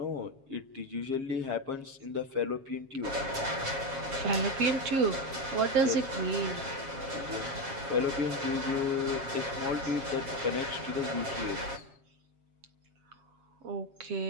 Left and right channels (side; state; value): left; late; 7.4 ms